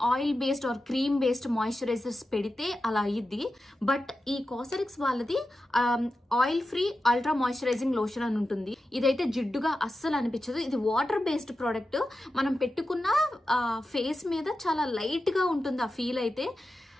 oil based or cream based moisturisers పెడితే అలా అయ్యిద్ది. బట్ ఈ కాసరెక్స్ వాళ్ళది oil free ultra moisturising lotion అని ఉంటుంది. ఇదైతే జిడ్డుగా అస్సలు అనిపించదు. ఇది వాటర్ బేస్డ్ ప్రోడక్ట్. మనం పెట్టుకున్న ఫేస్ మీద చాలా లైట్ గా ఉంటుంది ఆ ఫీల్. అయితే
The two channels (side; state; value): both; normal; correlation 0.91